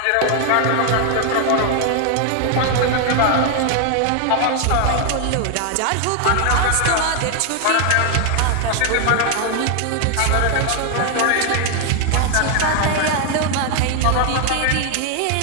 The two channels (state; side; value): different; both; correlation 0.00